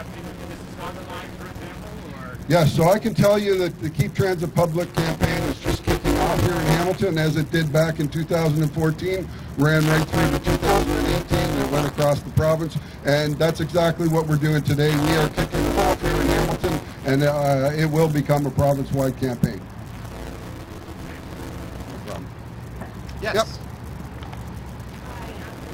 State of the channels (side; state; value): both; identical; correlation 1.00